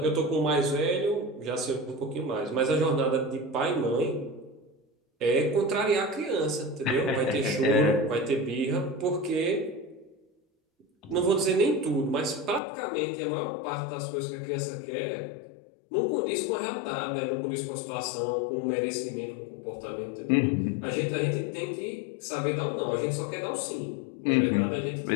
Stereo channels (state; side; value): drops out; right; at 12.6 s